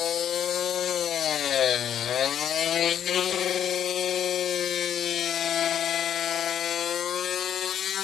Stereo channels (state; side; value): quieter; right; 9.5 dB